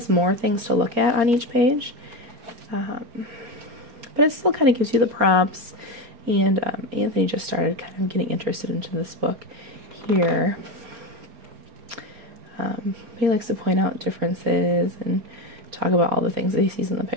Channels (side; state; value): left; late; 4.3 ms